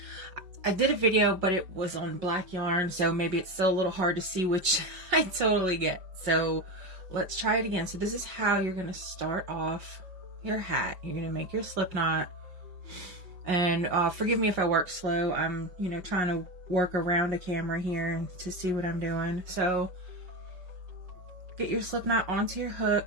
I did a video, but it was on black yarn, so maybe it's still a little hard to see, which I totally get. So let's try it again. So this is how you're going to start off your hat. You're going to make your slip knot, and forgive me if I work slow. I'm, trying to work around a camera here to see what I'm doing. So get your slip knot onto your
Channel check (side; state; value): left; late; 5.5 ms